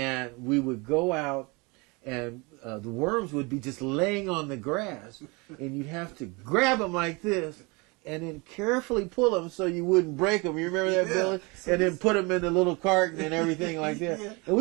we would go out and the worms would be just laying on the grass, and you'd have to grab them like this, and then carefully pull them so you wouldn't break them. You remember that, Billy? And then put them in the little carton and everything like that. Yeah. And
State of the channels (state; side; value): quieter; left; 27.6 dB